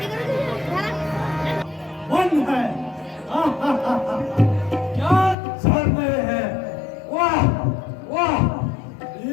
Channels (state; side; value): drops out; right; at 5.4 s